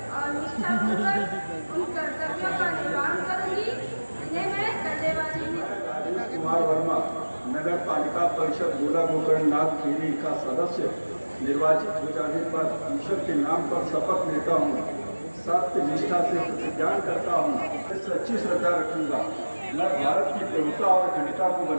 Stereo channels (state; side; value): inverted; both; correlation -1.00